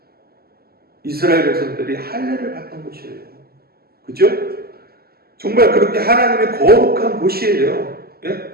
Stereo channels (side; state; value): left; late; 0.45 ms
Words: 이스라엘 백성들이 할례를 받던 곳이에요. 그죠? 정말 그렇게 하나님의 거룩한 곳이에요.